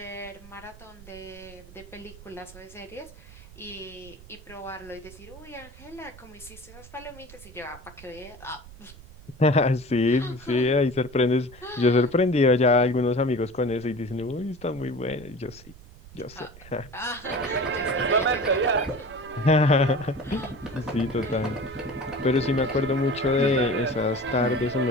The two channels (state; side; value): noise; right; rumble, 19 dB below the sound